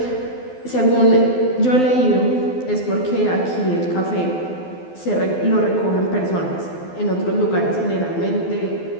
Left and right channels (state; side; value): late; right; 12 ms